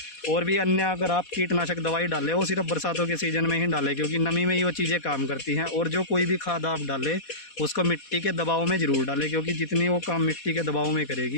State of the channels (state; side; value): late; right; 4.2 ms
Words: और भी अन्य अगर आप कीटनाशक दवाई डालें, वो सिर्फ बरसातों के सीज़न में ही डालें, क्योंकि नमी में ही वो चीज़ें काम करती हैं। और जो कोई भी खाद आप डालें उसको मिट्टी के दबाव में ज़रूर डालें, क्योंकि जितनी वो काम मिट्टी के दबाव में